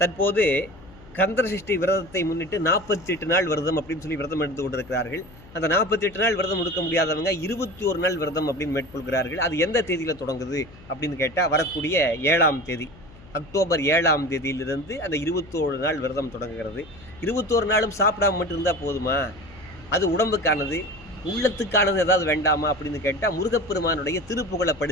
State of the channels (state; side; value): noise; left; hum, 21 dB below the sound